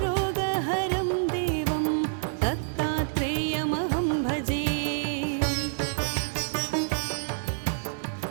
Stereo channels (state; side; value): silent; left; digital silence